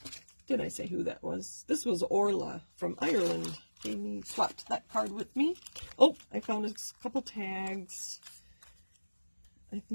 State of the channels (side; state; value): both; inverted; correlation -1.00